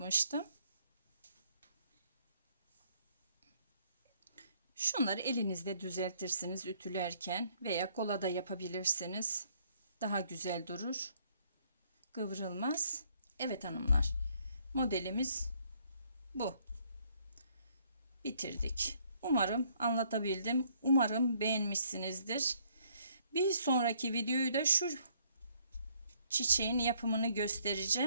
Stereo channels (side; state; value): both; inverted; correlation -0.67